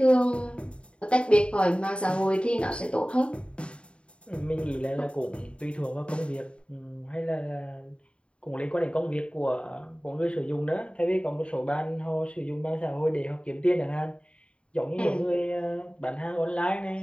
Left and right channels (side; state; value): right; late; 0.057 ms